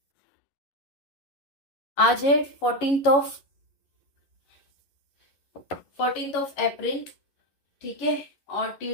आज है 14th ऑफ अप्रैल, ठीक है, और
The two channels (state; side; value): late; right; 11 ms